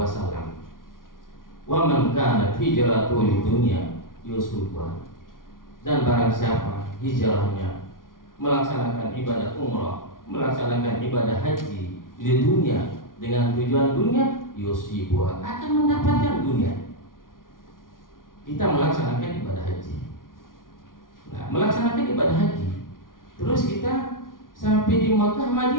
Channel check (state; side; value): late; right; 0.90 ms